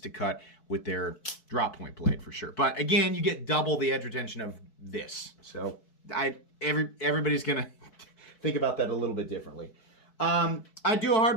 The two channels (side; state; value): right; late; 4.6 ms